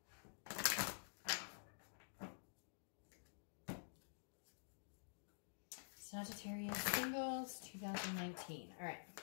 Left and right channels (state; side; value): silent; right; digital silence